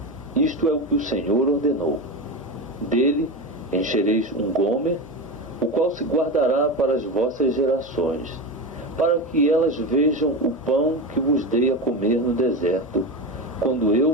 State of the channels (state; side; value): normal; both; correlation 0.21